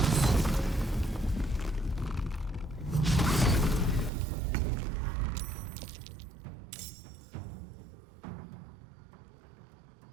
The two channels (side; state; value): left; drops out; at 4.1 s